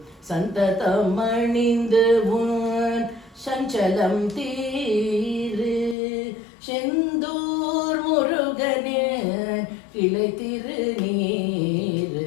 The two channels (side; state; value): right; drops out; at 6.0 s